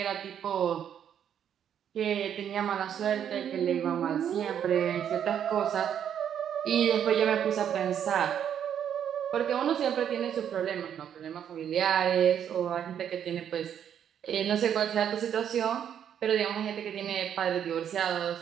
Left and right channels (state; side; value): quieter; left; 9.1 dB